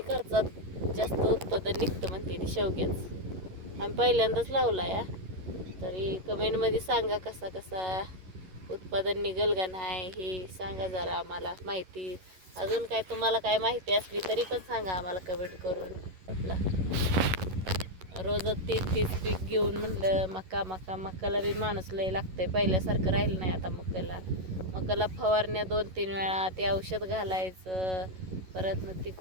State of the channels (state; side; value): late; left; 11 ms